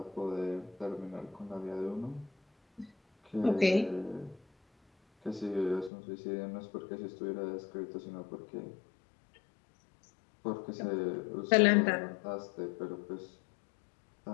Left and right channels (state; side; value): drops out; right; at 5.9 s